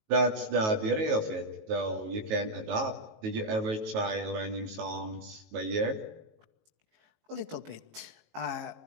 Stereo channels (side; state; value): left; late; 19 ms